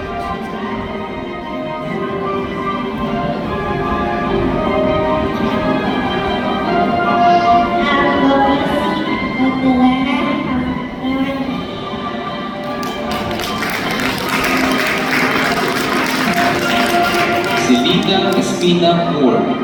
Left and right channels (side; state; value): both; identical; correlation 1.00